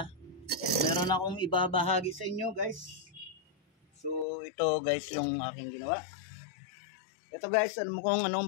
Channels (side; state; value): right; drops out; at 4.2 s